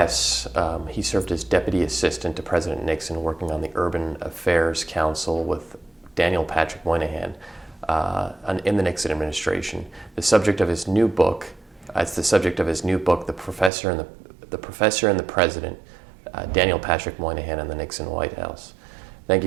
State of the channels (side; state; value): left; drops out; at 13.7 s